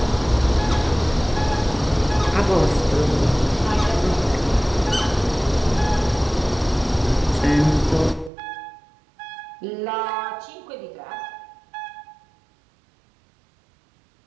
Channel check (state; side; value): drops out; left; at 8.3 s